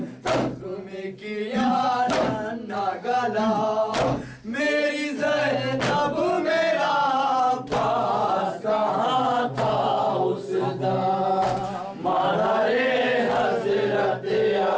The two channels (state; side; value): identical; both; correlation 1.00